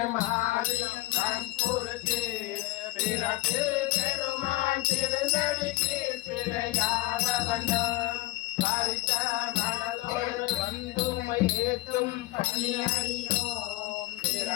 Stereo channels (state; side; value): quieter; right; 18.8 dB